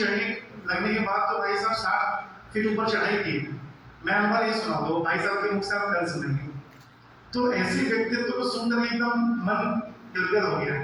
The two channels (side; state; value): both; identical; correlation 1.00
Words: लगने के बाद तो भाई साहब 60 फीट ऊपर चढ़ाई की। मैं अनुभव ये सुना दो भाई साहब के मुख से आप कल सुनेंगे। तो ऐसे व्यक्तित्व को सुनकर एकदम मन गदगद हो